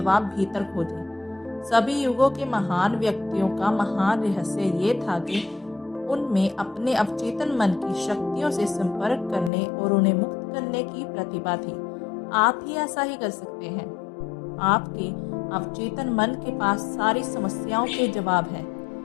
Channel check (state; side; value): drops out; right; at 9.5 s